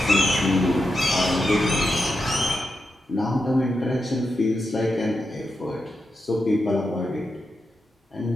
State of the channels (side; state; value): both; normal; correlation 0.87